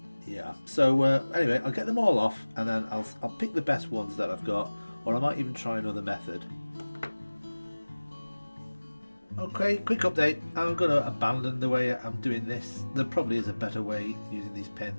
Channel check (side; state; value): both; inverted; correlation -1.00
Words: Yeah, so anyway, I'll get them all off, and then I'll pick the best ones that I've got, or I might even try another method. Okay, quick update. I'm going to abandon the way I'm doing this. There probably is a better way using these